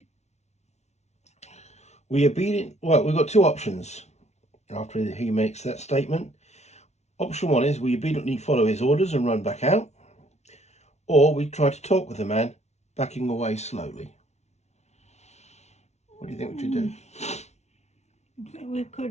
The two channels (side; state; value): right; late; 0.32 ms